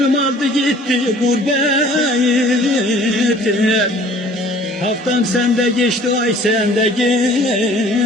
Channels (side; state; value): both; normal; correlation 0.51